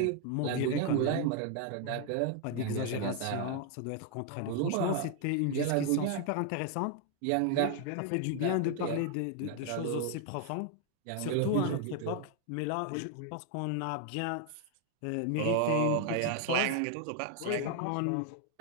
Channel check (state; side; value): different; both; correlation 0.00